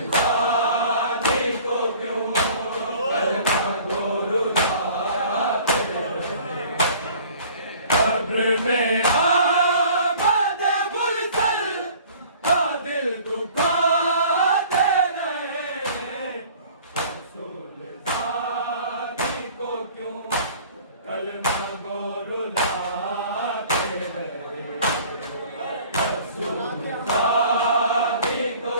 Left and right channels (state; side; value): inverted; both; correlation -0.49